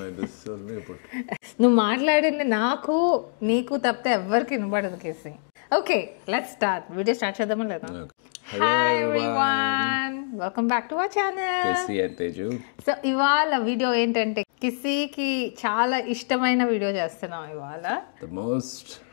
this only put. నువ్వు మాట్లాడింది నాకు నీకు తప్పితే ఎవరికి వినబడదు కేసి. Okay let's start. Video start చేద్దామా లేదా? Hello everyone. Welcome back to our channel. Kissy and Teju. So ఇవాళ వీడియో ఏంటంటే కిస్సీకి చాలా ఇష్టమైన వీడియో చేస్తున్నాం ఇవాళ. The most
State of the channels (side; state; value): right; silent; digital silence